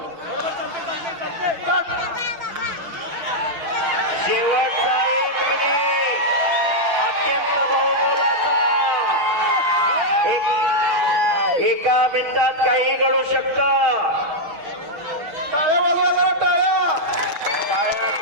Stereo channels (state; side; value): late; left; 6.4 ms